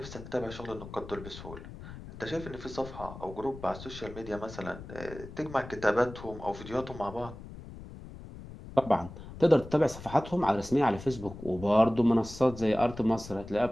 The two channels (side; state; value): left; noise; rumble, 14 dB below the sound